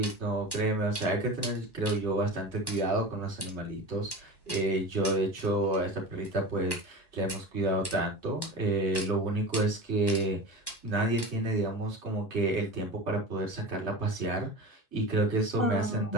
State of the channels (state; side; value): late; right; 1.1 ms